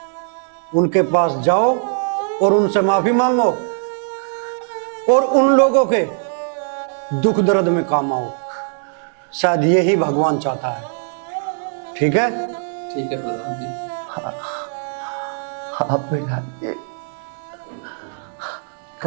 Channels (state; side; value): silent; left; digital silence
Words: उनके पास जाओ और उनसे माफी मांगो और उन लोगों के दुख दर्द में काम आओ। शायद यही भगवान चाहता है। ठीक है? ठीक है प्रधान जी। आप बैठाइए।